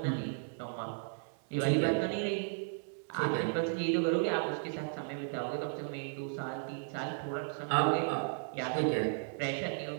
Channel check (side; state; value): left; silent; digital silence